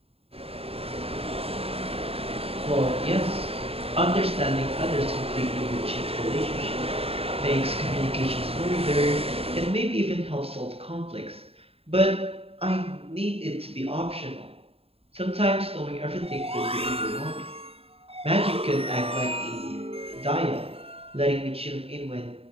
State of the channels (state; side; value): late; left; 0.28 ms